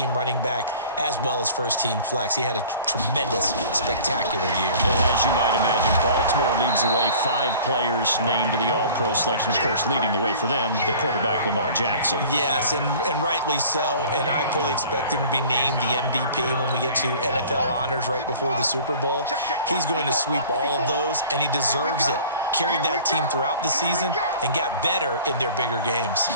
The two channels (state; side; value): inverted; both; correlation -0.46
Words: running back as well as first-team flex. He had a tremendous, spectacular year. And as you might imagine, Baltimore leads the way. 5 players named to the All-Pro selection. Of course, leading the way for them, the quarterback Lamar Jackson. Yes, and rightly so. And I fully expect him to be named the MVP when we get to NFL honors right before the Super Bowl. He's going to sweep all of those, and he deserves it. Carried that team throughout the season and got better in their bigger games.